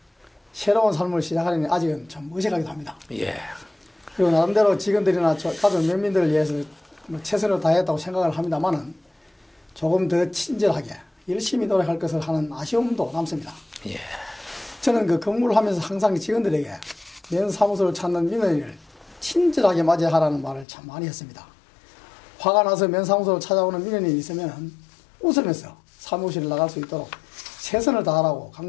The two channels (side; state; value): right; drops out; at 20.7 s